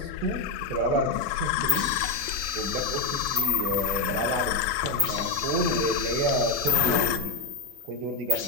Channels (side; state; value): right; quieter; 3.7 dB